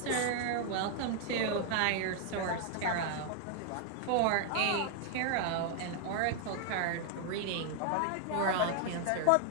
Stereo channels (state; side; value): different; both; correlation 0.00